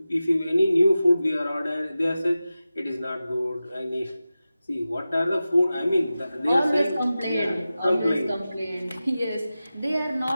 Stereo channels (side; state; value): both; inverted; correlation -0.94